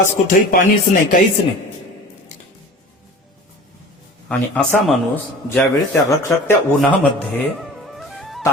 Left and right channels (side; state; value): both; normal; correlation 0.40